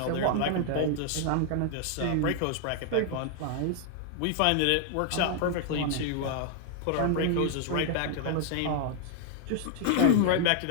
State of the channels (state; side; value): different; both; correlation 0.00